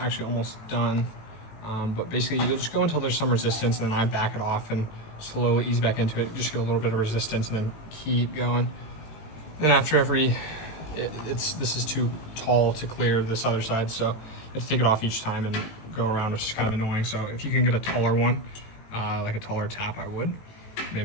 almost done. But basically you just go until there's some resistance, and then I back it off and slowly ease back into it. Just get a little bit of resistance and then keep going. Then after this is too tall to clear this other side. So you have to take it off each time and go around, which is kind of annoying. So if you can get a taller one, like a taller tap, I would.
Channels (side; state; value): right; late; 18 ms